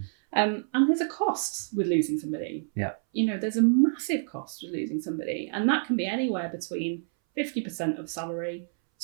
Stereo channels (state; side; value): silent; left; 59 dB below the other